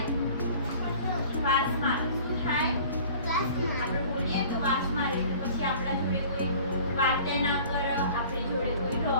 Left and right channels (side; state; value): both; inverted; correlation -0.47